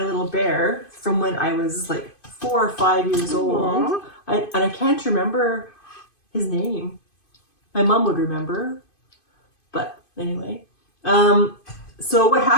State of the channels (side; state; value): right; late; 2.5 ms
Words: bear from when I was like 4 or 5 years old. And I can't remember his name. My mom would remember. But anyway. So what